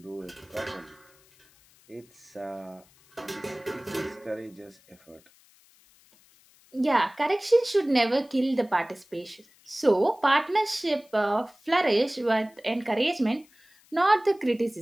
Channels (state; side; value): noise; left; hiss, 30 dB below the sound